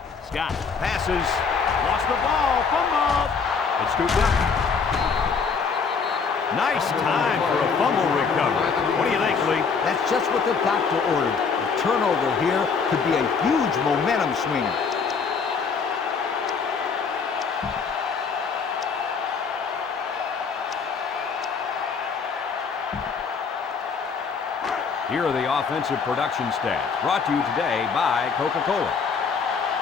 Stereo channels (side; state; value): right; quieter; 5.5 dB